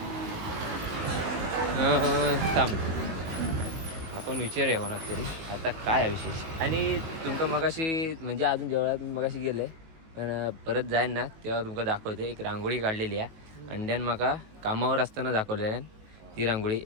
थांब आपण विचारूया कोणाक तरी आता काय आहे विशेष. आणि तुमका मगाशी म्हणजे अजून देवळात मगाशी गेलं आहे, पण परत जाईन ना तेव्हा तुमका दाखवते. एक रांगोळी काढलेली आहे अंड्यान, माका कामावर असताना दाखवलेल्या ती रांगोळी.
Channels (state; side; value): late; left; 18 ms